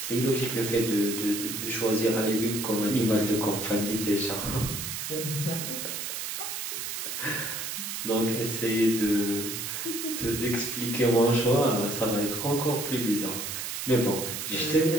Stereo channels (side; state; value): right; noise; hiss, 5 dB below the sound